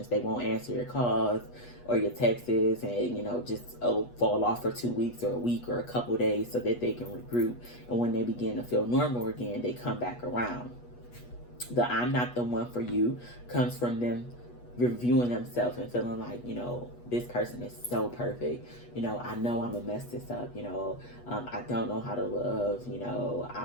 They won't answer your calls or your texts, and just fall off for 2 weeks or a week or a couple days so that they can regroup. And when they begin to feel normal again, they come back around. The I'm not the one for you comes from them reviewing themselves and feeling like, this person is so perfect. I know I'm gonna mess this up. I don't know how to love.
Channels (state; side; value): late; right; 8.2 ms